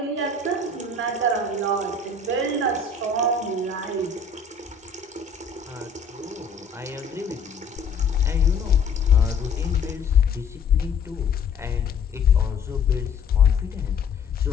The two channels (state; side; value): quieter; right; 4.7 dB